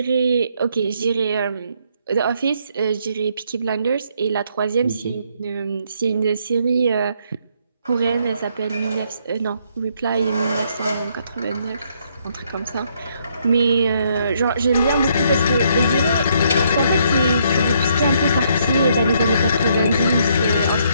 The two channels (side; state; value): both; inverted; correlation -0.71